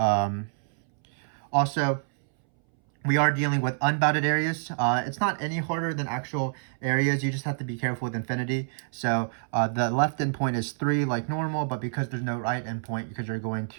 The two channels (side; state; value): left; silent; 60 dB below the other